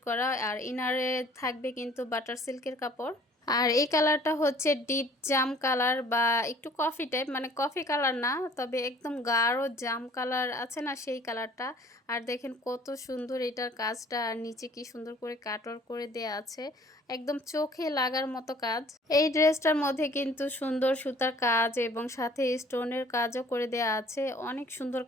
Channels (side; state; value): both; normal; correlation 0.54